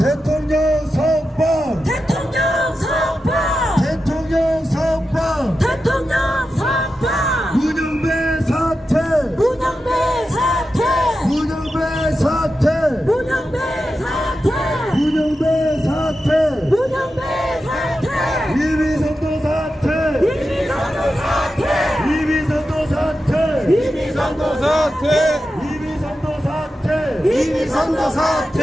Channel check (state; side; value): normal; both; correlation 0.90